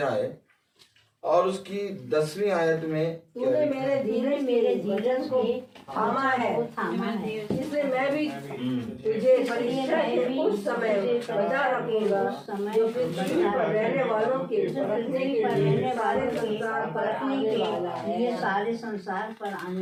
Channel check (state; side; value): identical; both; correlation 1.00